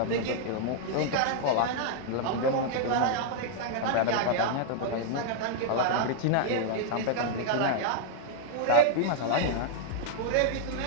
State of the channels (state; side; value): different; both; correlation -0.01